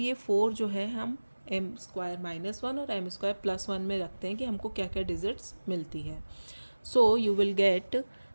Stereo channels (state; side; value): inverted; both; correlation -1.00